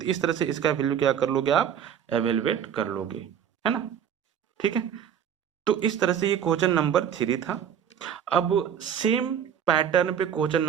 इस तरह से इसका वैल्यू क्या कर लोगे, आप एवेलुएट कर लोगे, है ना। ठीक है, तो इस तरह से ये क्वेश्चन नंबर 3 था। अब सेम पैटर्न पे क्वेश्चन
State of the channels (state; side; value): quieter; left; 8.7 dB